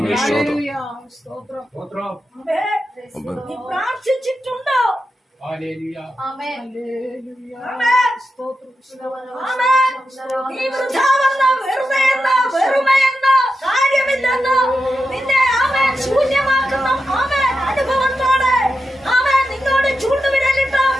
നീ പ്രാർത്ഥിച്ചിട്ടുണ്ടോ? നീ വൃഥാവെന്ന് വെറുമയെന്ന് കാര്യമില്ലെന്ന് നിന്നെ അവൻ ശൂന്യമാക്കുന്ന അവൻ അനുഭവത്തോടെ അവൻ നിന്നോട് ചൂണ്ടുവിരലിട്ട്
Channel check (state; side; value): normal; both; correlation 0.90